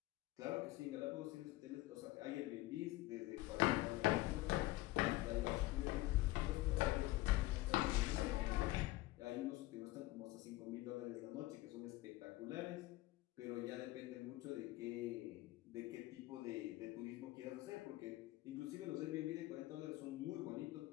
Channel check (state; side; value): quieter; right; 18.4 dB